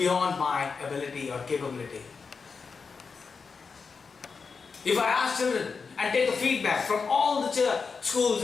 my ability or capability. If I ask children and take a feedback from all the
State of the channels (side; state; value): right; quieter; 5.1 dB